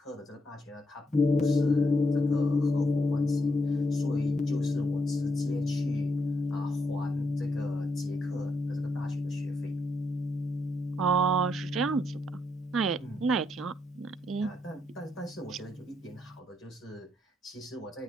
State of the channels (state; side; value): normal; both; correlation 0.79